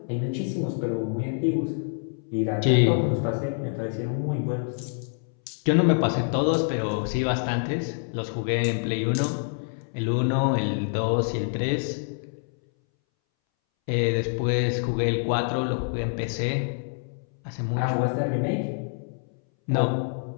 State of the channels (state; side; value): silent; right; 61 dB below the other